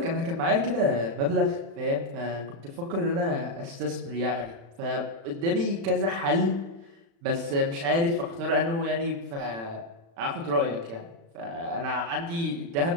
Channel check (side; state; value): left; late; 35 ms